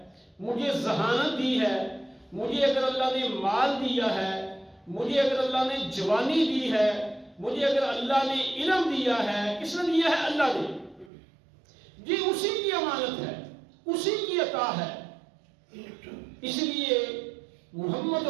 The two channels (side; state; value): left; drops out; at 11.1 s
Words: مجھے ذہانت دی ہے، مجھے اگر اللہ نے مال دیا ہے، مجھے اگر اللہ نے جوانی دی ہے، مجھے اگر اللہ نے علم دیا ہے، کس نے دیا ہے؟ اللہ نے۔ جی اسی کی امانت ہے، اسی کی عطا ہے۔ اس لیے محمد